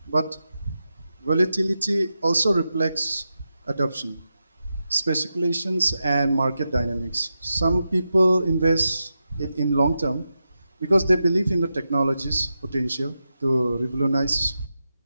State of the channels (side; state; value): both; inverted; correlation -0.89